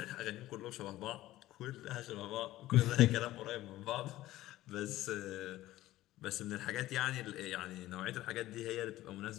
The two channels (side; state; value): right; quieter; 15.8 dB